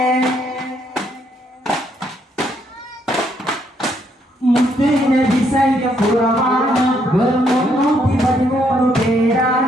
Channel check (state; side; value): normal; both; correlation 0.72